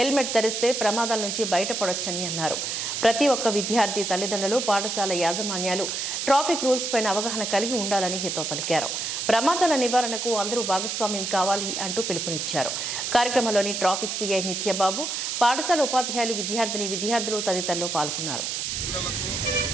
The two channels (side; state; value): right; noise; hiss, 2 dB below the sound